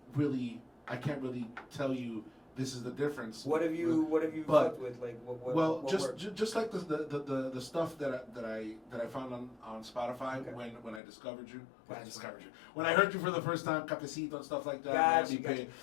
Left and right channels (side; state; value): right; drops out; at 11.0 s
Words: really tell you this is the difference. What have you But- fucked with? Like what? Well, what just worked? just like the stuff that I found on Spotify Okay. when I discovered you, Gotcha. when I heard you for the first time, Cafecito and stuff like that. Gotcha, Miami gotcha. Bay.